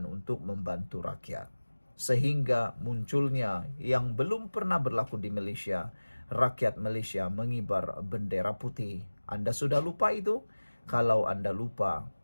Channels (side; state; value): both; inverted; correlation -1.00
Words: untuk membantu rakyat. Sehingga munculnya yang belum pernah berlaku di Malaysia, rakyat Malaysia mengibar bendera putih. Anda sudah lupa itu? Kalau Anda lupa,